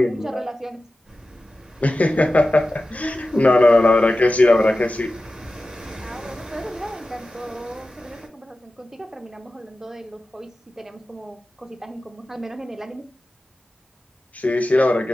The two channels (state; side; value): normal; both; correlation 0.94